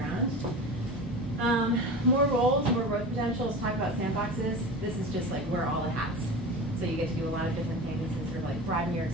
More roles, more growth potential. Let's talk about sandboxes. This is just like wear all the hats. So you get to do a lot of different things and sort of like broaden your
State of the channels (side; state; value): both; normal; correlation 0.31